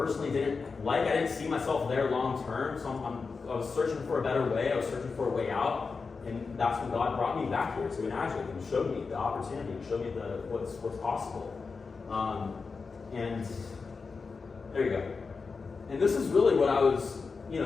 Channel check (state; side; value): quieter; right; 4.7 dB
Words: didn't like. I didn't see myself there long term, so I was searching for a better way. I was searching for a way out, and that's when God brought me back here to Enagic and showed me the opportunity, and showed me what's possible. And there you go. And this is really what I was,